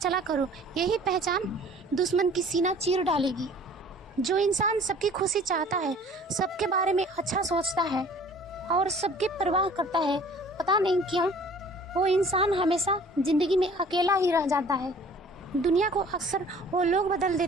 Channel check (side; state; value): both; normal; correlation 0.50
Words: करो, यही पहचान दुश्मन की सीना चीर डालेगी। जो इंसान सबकी खुशी चाहता है, सबके बारे में अच्छा सोचता है और सबकी परवाह करता है, पता नहीं क्यों वो इंसान हमेशा जिंदगी में अकेला ही रह जाता है। दुनिया को अक्सर वो लोग बदल